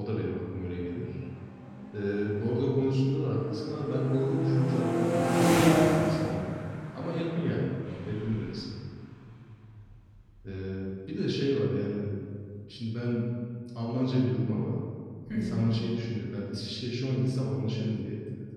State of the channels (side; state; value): both; identical; correlation 1.00